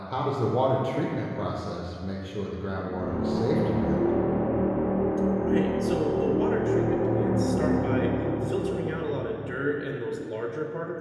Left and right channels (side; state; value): both; identical; correlation 1.00